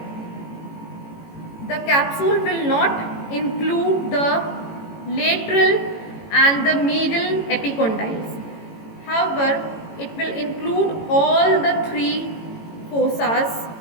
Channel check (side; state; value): right; late; 18 ms